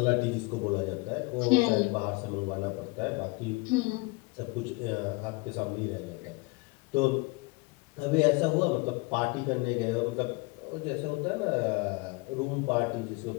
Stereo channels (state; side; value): quieter; right; 25.8 dB